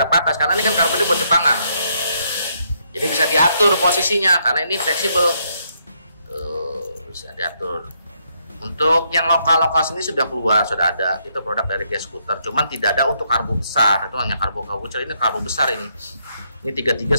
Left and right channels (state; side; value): inverted; both; correlation -0.74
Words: patas, karena ini kan karbu ini buat Jepangan. Jadi bisa diatur posisinya karena ini fleksibel. Tuh, bisa diatur. Untuk yang lokal sini sudah keluar, sudah ada. Itu produk dari Gas Scooter. Cuman tidak ada untuk karbo besar. Itu hanya karbo kecil. Ini karbo besar ini. Ini 33